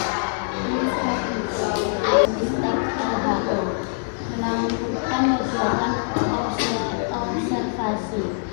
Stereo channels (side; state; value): right; silent; digital silence